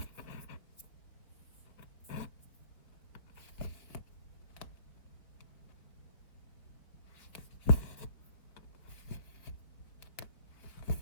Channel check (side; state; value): right; late; 4.2 ms